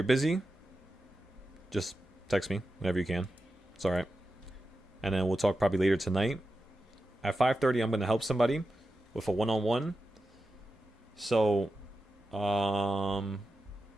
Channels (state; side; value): normal; both; correlation 0.91